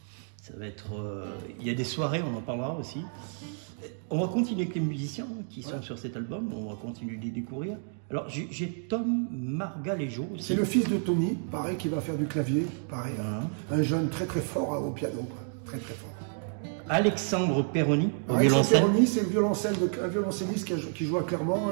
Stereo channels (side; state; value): left; silent; 55 dB below the other